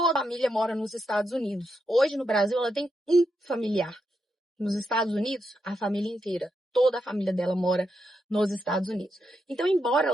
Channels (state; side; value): normal; both; correlation 0.84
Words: a família mora nos Estados Unidos. Hoje, no Brasil, ela tem um familiar. Nos Estados Unidos, a família inteira. Toda a família dela mora nos Estados Unidos. Então, embora